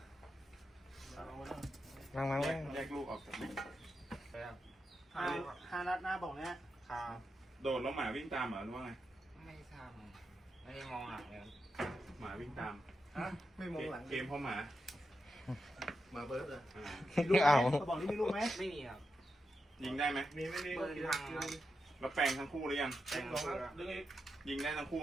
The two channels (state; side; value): normal; both; correlation 0.87